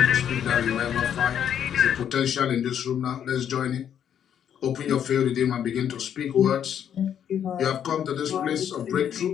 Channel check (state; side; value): quieter; right; 9.2 dB